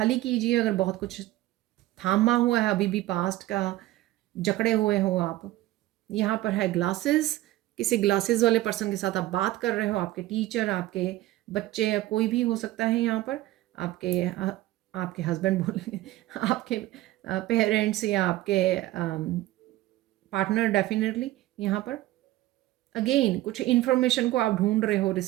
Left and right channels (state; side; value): quieter; left; 16.3 dB